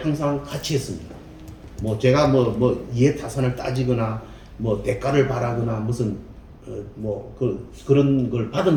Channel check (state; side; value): identical; both; correlation 1.00